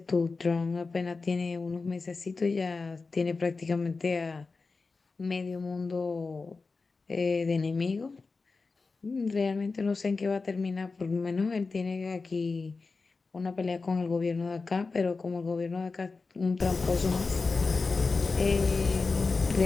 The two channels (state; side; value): quieter; right; 4.1 dB